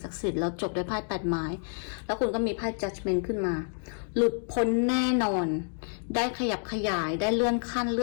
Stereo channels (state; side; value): silent; right; 59 dB below the other